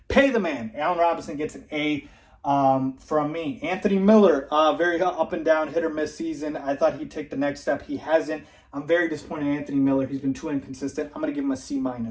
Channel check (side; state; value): both; identical; correlation 1.00